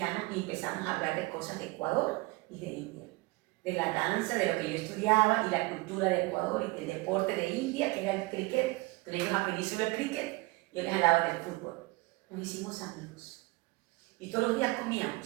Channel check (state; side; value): quieter; left; 23.1 dB